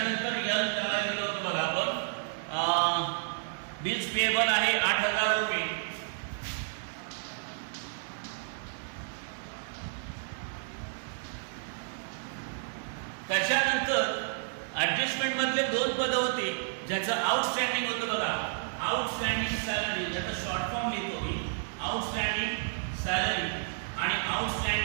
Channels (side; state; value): left; silent; digital silence